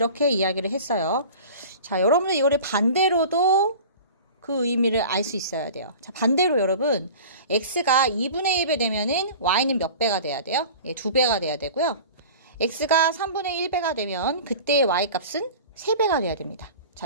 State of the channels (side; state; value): both; inverted; correlation -0.38